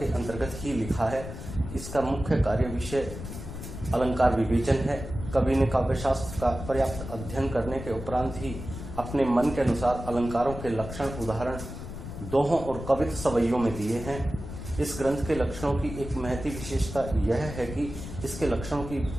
अंतर्गत ही लिखा है। इसका मुख्य कार्य विषय अलंकार विवेचन है। कवि ने काव्यशास्त्र का पर्याप्त अध्ययन करने के उपरांत ही अपने मन के अनुसार अलंकारों के लक्षण उदाहरण दोहों और कवित्व सवैयों में दिए हैं। इस ग्रंथ के लक्षणों की एक महती विशेषता यह है कि इसके लक्षणों की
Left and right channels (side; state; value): left; noise; rumble, 9 dB below the sound